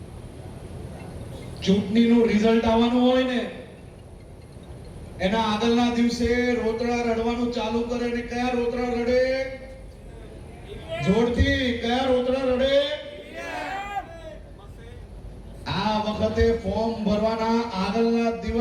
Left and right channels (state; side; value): identical; both; correlation 1.00